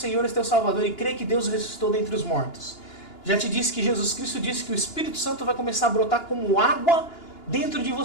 e teu Salvador, e crê que Deus o ressuscitou dentre os mortos. Já te disse que Jesus Cristo disse que o Espírito Santo vai começar a brotar como água dentro de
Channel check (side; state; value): right; late; 2.9 ms